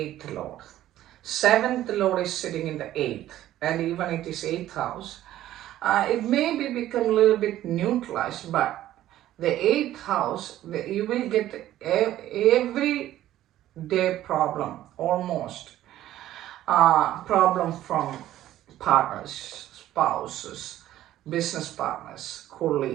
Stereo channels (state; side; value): quieter; left; 13.5 dB